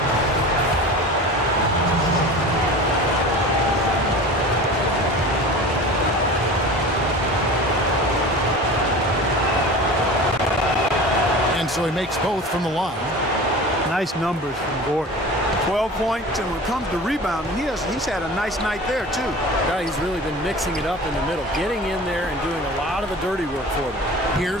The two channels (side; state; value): both; normal; correlation 0.36